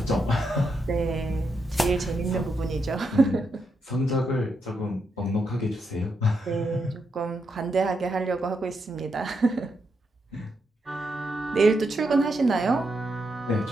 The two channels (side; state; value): both; normal; correlation 0.82